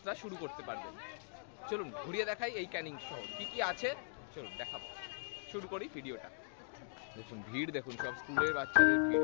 শুরু করতে পারবেন। চলুন ঘুরিয়ে দেখাই এই ক্যানিং শহর কি কি আছে, চলুন দেখাবো। শুরু করি ভিডিওটা। দেখুন ভিড়, দেখুন সব স্কুলের বাচ্চাদের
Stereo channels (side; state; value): right; silent; digital silence